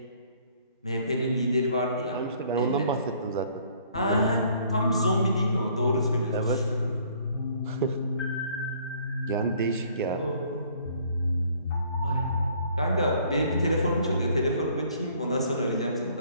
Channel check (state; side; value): inverted; both; correlation -0.60